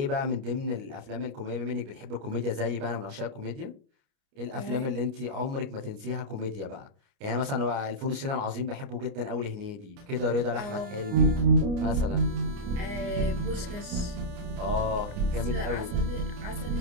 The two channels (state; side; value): late; left; 29 ms